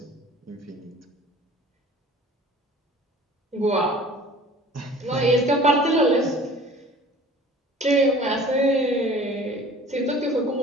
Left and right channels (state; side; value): normal; both; correlation 0.46